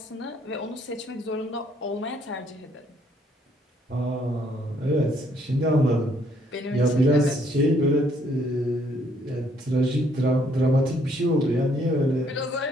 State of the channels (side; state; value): both; normal; correlation 0.67